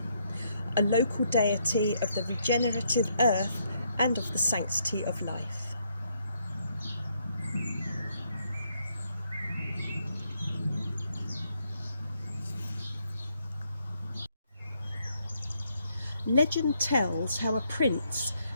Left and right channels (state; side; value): inverted; both; correlation -0.74